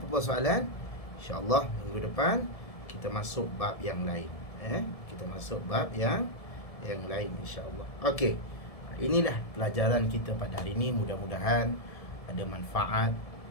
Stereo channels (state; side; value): late; right; 1.7 ms